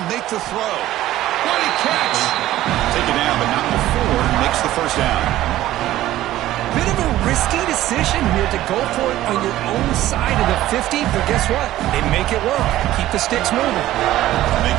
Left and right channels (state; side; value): quieter; left; 14.6 dB